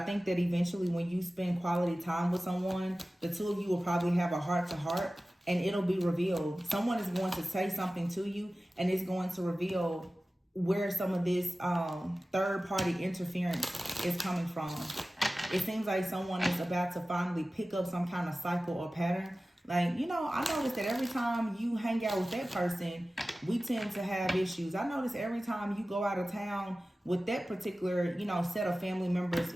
think that eventually when you spend quality time with someone, the two of you will probably have a heart-to-heart and it'll be revealed. Someone is going to say something to you and it's going to reveal where some of this third-party interference is coming from. It seems like someone is about to finally pick up some kind of cycle or pattern. Like, you know, I noticed that every time you hang out with that person, we tend to have issues. I notice every time you go out of town with that particular, you know, set of family members,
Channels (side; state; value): both; normal; correlation 0.96